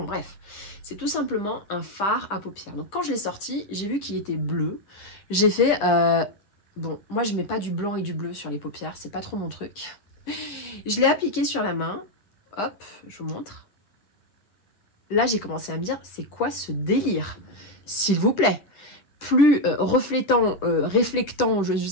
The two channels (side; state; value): right; late; 10 ms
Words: bref, c'est tout simplement un fard à paupières. Donc quand je l'ai sorti, j'ai vu qu'il était bleu, j'ai fait bon, moi je mets pas du blanc et du bleu sur les paupières, c'est pas trop mon truc. Je l'ai appliqué sur la main, hop, je vous montre. Là j'ai commencé à me dire, c'est quoi ce délire? S'il vous plaît. plus reflétant, réflectant, je